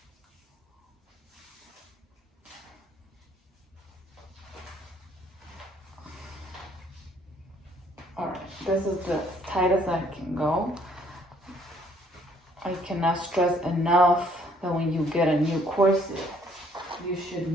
Alright, this is the tightest I can go. I cannot stress enough that when you get a new corset, you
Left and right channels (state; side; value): normal; both; correlation 0.63